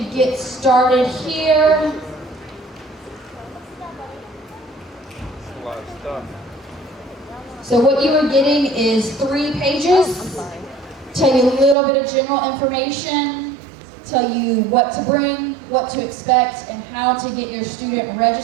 get started here. A lot of stuff. So what you are getting is 3 pages. I'm sorry. Tell you a little bit of general information, tell you what to bring, what to expect, and how to get your student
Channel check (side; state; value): left; drops out; at 11.8 s